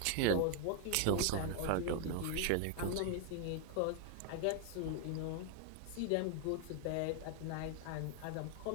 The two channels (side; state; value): both; different; correlation 0.00